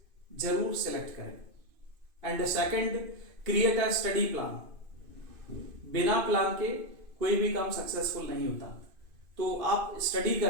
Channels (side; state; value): left; late; 2.5 ms